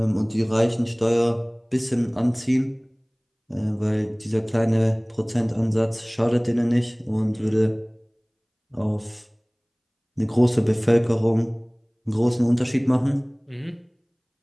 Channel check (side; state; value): both; identical; correlation 1.00